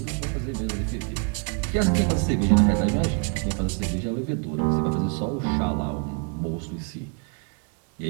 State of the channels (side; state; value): left; quieter; 36.6 dB